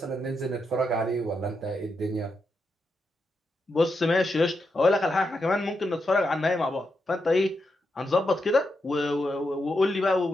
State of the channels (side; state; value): both; normal; correlation 0.84